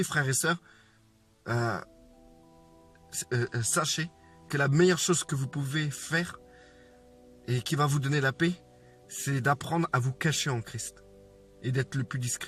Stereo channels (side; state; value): both; identical; correlation 1.00